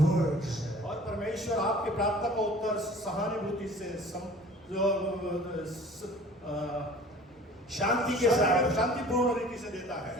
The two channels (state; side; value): normal; both; correlation 0.47